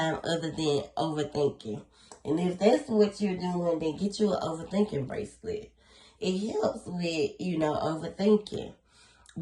other than overthinking. And if that's what you're doing, then get you an overthinking bracelet. It helps with, overthinking.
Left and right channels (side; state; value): both; identical; correlation 1.00